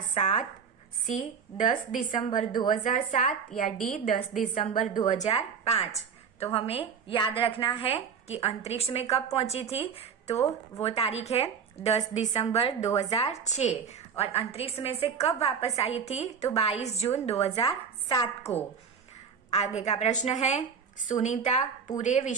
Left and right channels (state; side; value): quieter; left; 6.7 dB